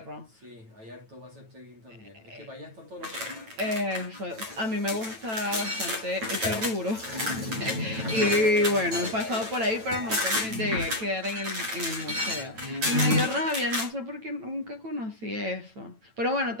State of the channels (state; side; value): late; left; 9.0 ms